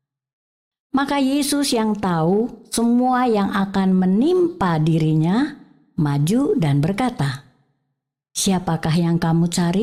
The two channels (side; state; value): both; identical; correlation 1.00